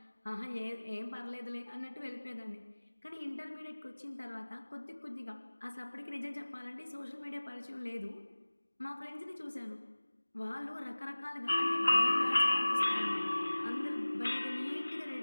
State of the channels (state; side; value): inverted; both; correlation -1.00